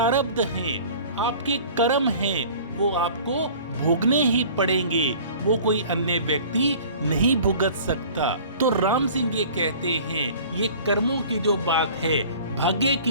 हैं, आपके कर्म हैं, वो आपको भोगने ही पड़ेंगे, वो कोई अन्य व्यक्ति नहीं भुगत सकता। तो राम सिंह ये कहते हैं, ये कर्मों की जो बात है, भाग्य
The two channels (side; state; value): both; inverted; correlation -0.45